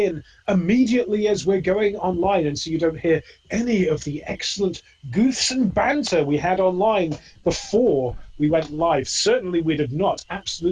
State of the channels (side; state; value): both; identical; correlation 1.00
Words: immediately as we're going online, and so you don't hear any of the excellent goofs and banter we had online before we went live. Certainly,